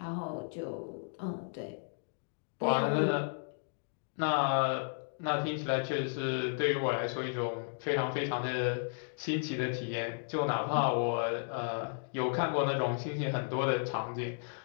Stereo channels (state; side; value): silent; right; digital silence